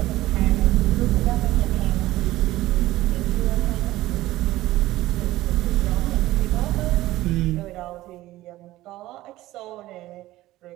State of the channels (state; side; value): quieter; left; 16.5 dB